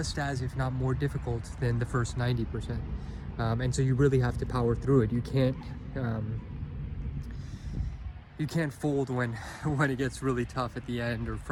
as, if not more difficult than the first 90%. And so you really have to power through it. You can't fold when it gets really tough at the end, or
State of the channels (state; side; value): identical; both; correlation 1.00